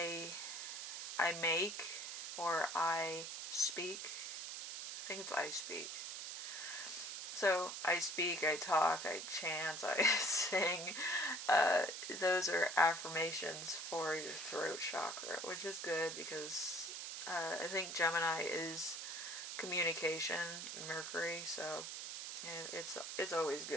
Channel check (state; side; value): noise; right; hiss, 6 dB below the sound